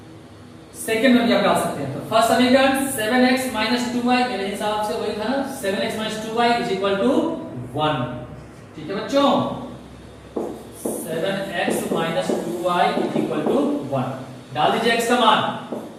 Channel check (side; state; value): both; identical; correlation 1.00